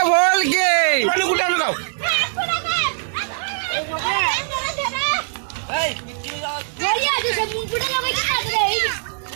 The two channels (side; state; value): left; silent; 65 dB below the other